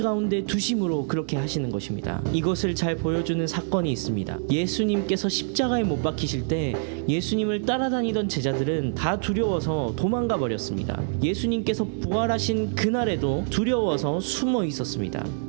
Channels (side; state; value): left; silent; digital silence